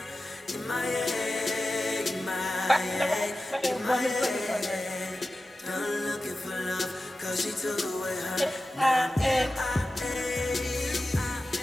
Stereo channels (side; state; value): both; normal; correlation 0.94